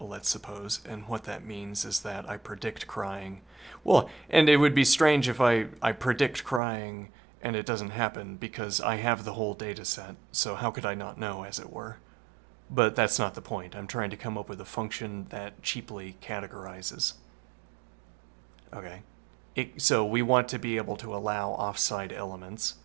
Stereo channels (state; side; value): drops out; left; at 6.6 s